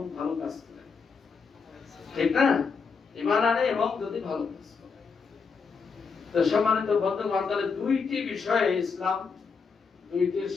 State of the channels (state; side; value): quieter; right; 5.3 dB